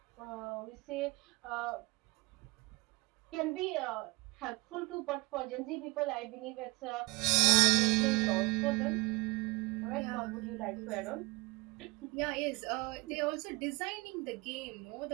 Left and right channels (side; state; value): left; quieter; 24.5 dB